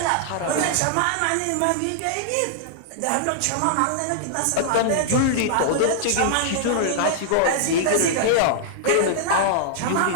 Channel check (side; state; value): both; different; correlation -0.01